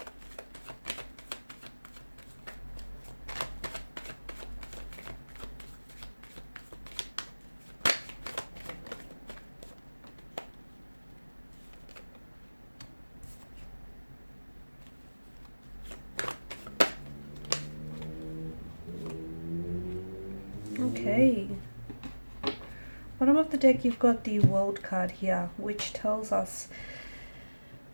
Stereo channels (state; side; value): inverted; both; correlation -1.00